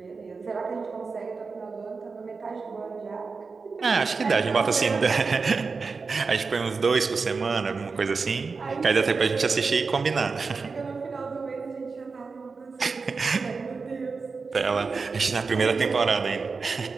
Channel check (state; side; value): quieter; left; 4.6 dB